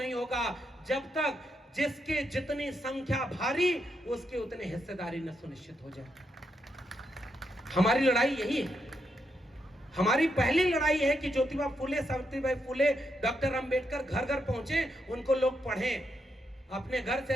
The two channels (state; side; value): normal; both; correlation 0.81